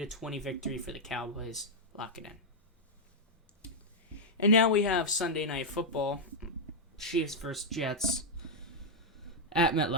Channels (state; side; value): normal; both; correlation -0.02